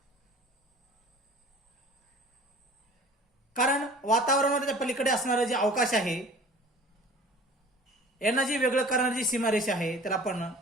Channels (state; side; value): normal; both; correlation 0.45